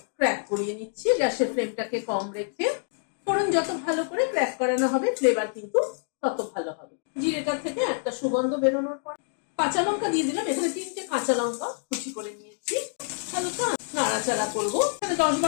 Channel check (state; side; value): silent; right; digital silence